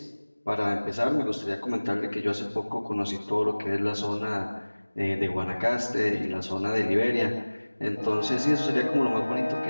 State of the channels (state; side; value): inverted; both; correlation -1.00